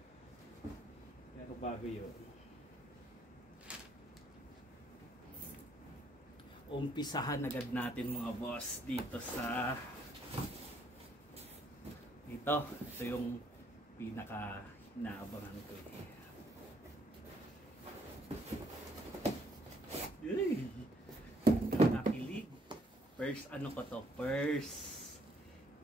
Pero bago yun, umpisahan agad natin mga boss dito sa ito yung pinaka inaabangan ko nakakilig. First ano ko to, first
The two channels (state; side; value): normal; both; correlation 0.67